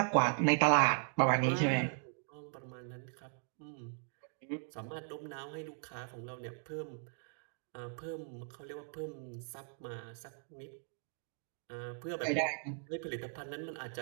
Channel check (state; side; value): silent; left; 52 dB below the other